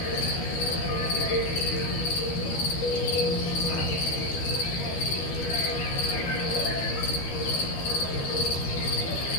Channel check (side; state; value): right; late; 12 ms